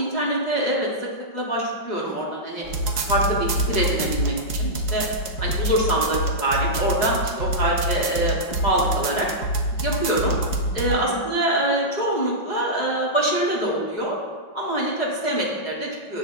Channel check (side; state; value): right; late; 5.3 ms